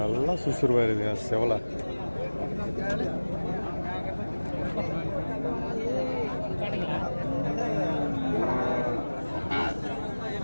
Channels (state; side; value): inverted; both; correlation -1.00